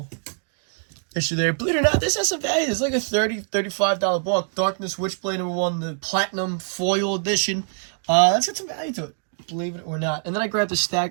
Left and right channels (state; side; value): silent; left; digital silence